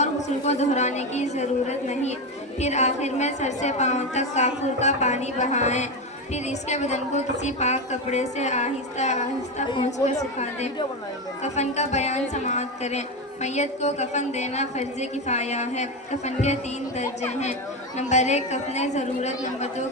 غسل کو دہرانے کی ضرورت نہیں۔ پھر آخر میں سر سے پاؤں تک کافور کا پانی بہائیں، پھر اس کے بدن کو کسی پاک کپڑے سے آہستہ آہستہ پونچھ کر سکھا دیں۔ کفن کا بیان سماعت کریں۔ میت کو کفن دینا فرض کفایہ ہے۔ کفن کے 3 درجے ہیں: نمبر 1 کفن ضرورت، نمبر 2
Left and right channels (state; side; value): normal; both; correlation 0.15